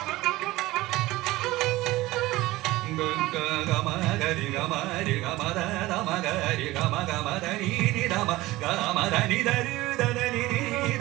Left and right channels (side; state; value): left; quieter; 18.6 dB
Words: கமகரி கமரி கமத மகரி கம கமதனி தப கமதனி தரி தனி